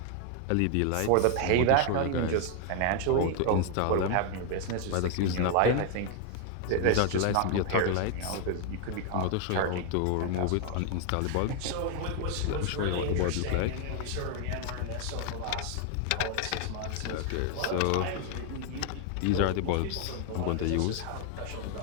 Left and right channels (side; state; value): both; different; correlation 0.00